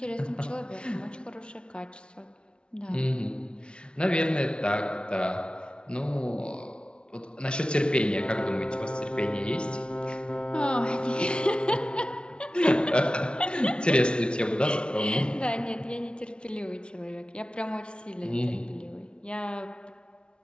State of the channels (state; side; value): late; right; 0.056 ms